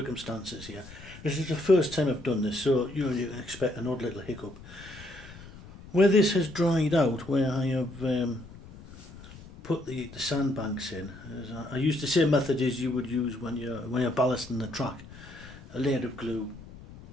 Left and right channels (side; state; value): left; noise; rumble, 17 dB below the sound